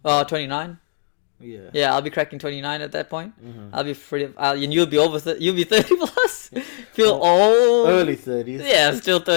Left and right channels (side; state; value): right; silent; digital silence